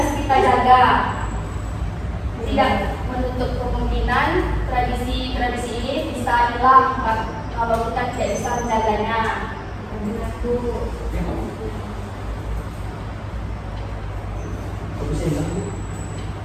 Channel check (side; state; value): both; identical; correlation 1.00